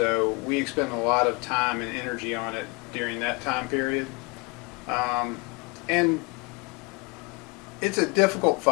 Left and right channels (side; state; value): right; quieter; 28.5 dB